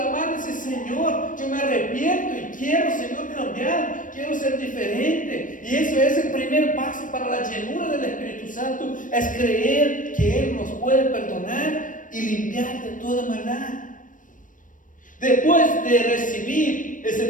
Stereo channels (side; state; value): right; late; 0.38 ms